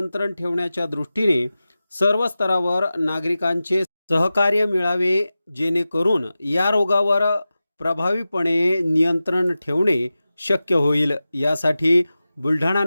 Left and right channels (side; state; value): both; inverted; correlation -0.95